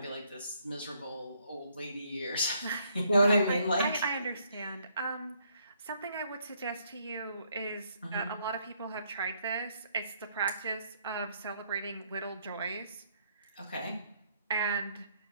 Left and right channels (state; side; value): inverted; both; correlation -0.69